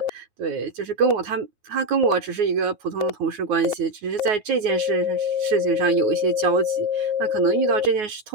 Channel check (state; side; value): late; left; 9.5 ms